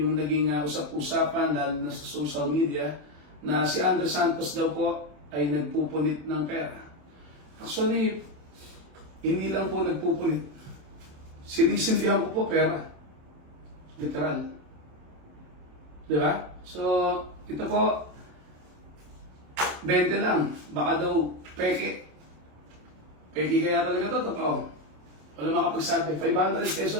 naging usap-usapan lalo na sa social media na si Andre Santos daw po ay nagpupunit ng pera. Actually, hindi lang po nagpupunit. Sinisindihan ko po pera. Literal. Diba? So, ito po, 20 lang. Baka daw peke. Peke kaya talaga ito, totoo. Wala makapagsabi. 500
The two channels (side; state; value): left; late; 27 ms